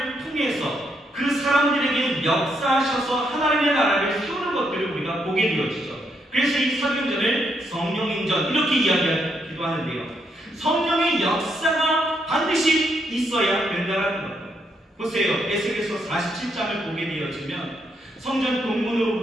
통해서 그 사람들에게 역사하셔서 하나님의 나라를 세우는 것들을 우리가 보게 되어지죠. 그래서 이 사도행전을 성령행전 이렇게 이야기하기도 하는데요. 성령의 역사가 반드시 있어야 된다는 거예요. 보세요. 에스겔서 47장을 보게 되어지면 성전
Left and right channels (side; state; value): both; normal; correlation 0.76